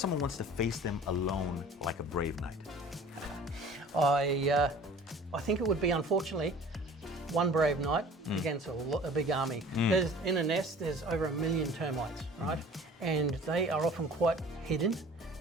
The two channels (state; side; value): normal; both; correlation 0.45